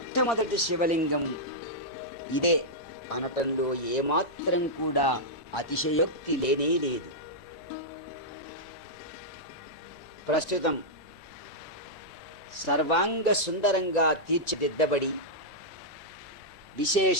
శివలింగం ఇదే అనటంలో ఏమాత్రం కూడా అతిశయోక్తి లేనే లేదు. ప్రస్తుతం సర్వాంగ సుందరంగా తీర్చిదిద్దబడి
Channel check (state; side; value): late; right; 1.9 ms